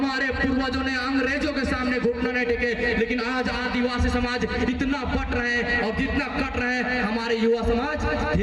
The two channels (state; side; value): identical; both; correlation 1.00